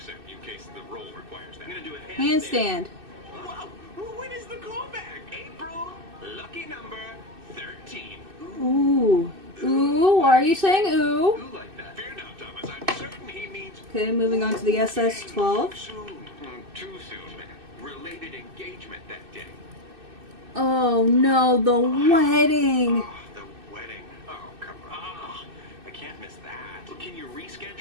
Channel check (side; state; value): left; late; 2.6 ms